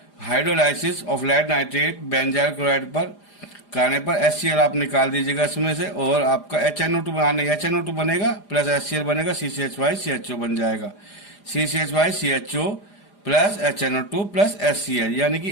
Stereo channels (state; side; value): late; right; 4.9 ms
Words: hydrolysis of lead nitrate benzyl chloride पर करने पर HCl आप निकाल दीजिएगा इसमें से और आपका HNO2 बनेगा प्लस HCl बनेगा CCH5CHO बन जाएगा. CCH5CHO plus HNO2 plus HCl यानी कि